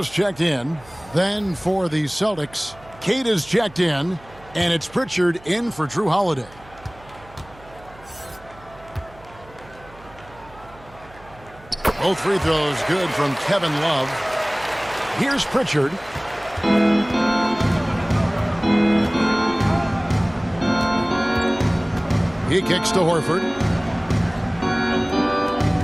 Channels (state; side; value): noise; right; hum, 23 dB below the sound